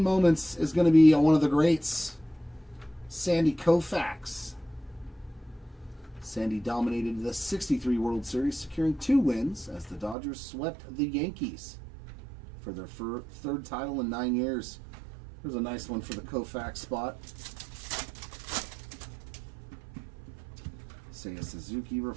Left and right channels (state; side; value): drops out; left; at 10.2 s